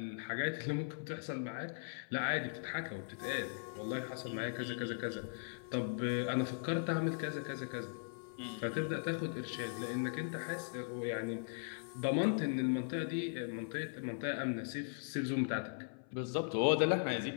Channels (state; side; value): silent; right; 52 dB below the other